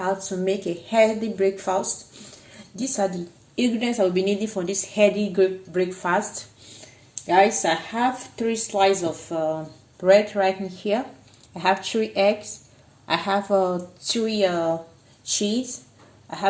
to make a healthy breakfast. These are the ingredients I will be needing for this healthy breakfast. Guys, I have 3 slices of bread right in here. I have 3 eggs. I have 3 cheese. I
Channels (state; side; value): identical; both; correlation 1.00